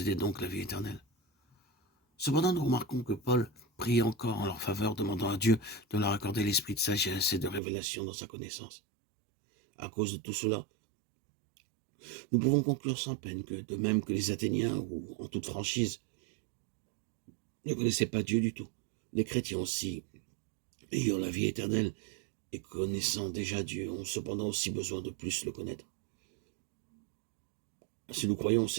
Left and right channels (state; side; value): drops out; left; at 7.6 s